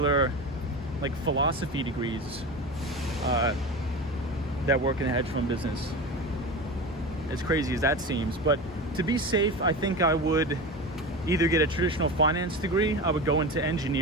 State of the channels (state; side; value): normal; both; correlation 0.27